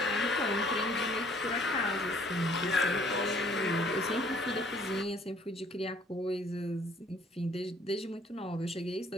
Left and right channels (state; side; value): normal; both; correlation 0.60